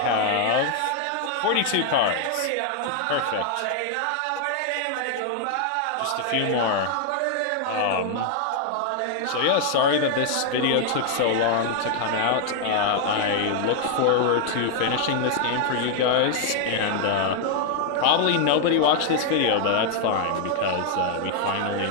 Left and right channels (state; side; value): different; both; correlation 0.00